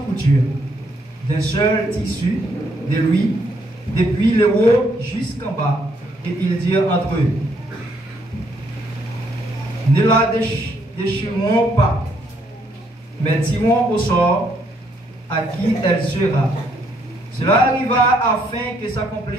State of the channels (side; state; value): both; normal; correlation 0.71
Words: couture, d'un seul tissu de lui, depuis le haut jusqu'en bas, et ils dirent entre eux: ne la déchirons pas, mais tirons au sort à qui elle sera. Cela arriva afin que